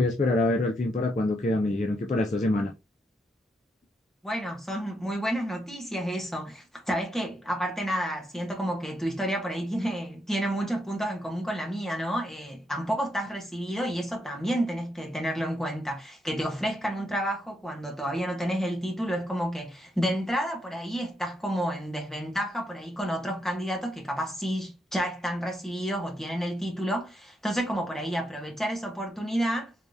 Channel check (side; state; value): both; normal; correlation 0.79